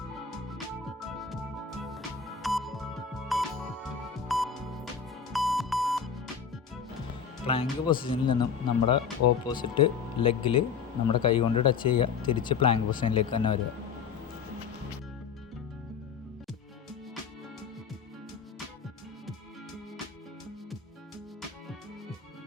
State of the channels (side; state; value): right; quieter; 6.5 dB